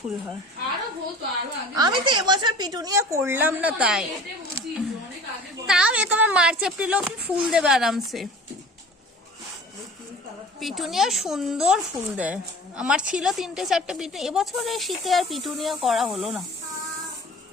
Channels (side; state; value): both; normal; correlation 0.43